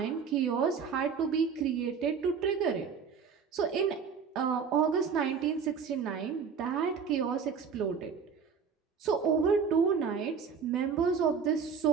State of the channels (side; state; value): left; quieter; 6.3 dB